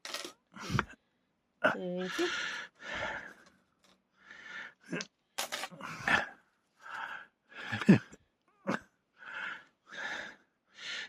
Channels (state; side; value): identical; both; correlation 1.00